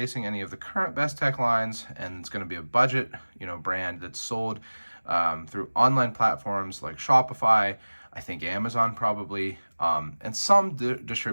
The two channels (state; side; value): inverted; both; correlation -1.00